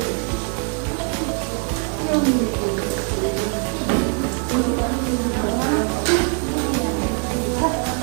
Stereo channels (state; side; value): quieter; left; 37.5 dB